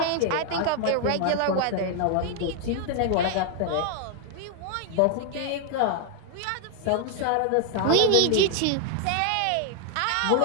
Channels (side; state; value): both; different; correlation 0.00